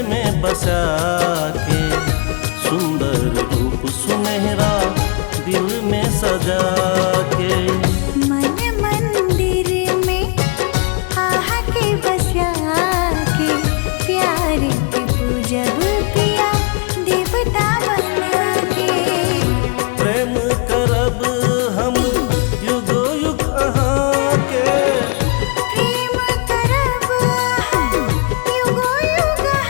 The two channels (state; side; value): quieter; right; 34.5 dB